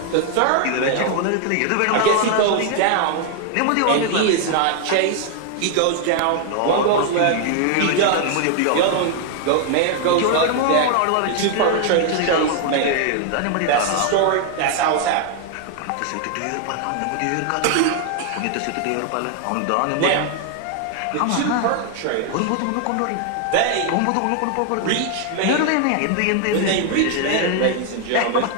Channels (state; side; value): different; both; correlation 0.00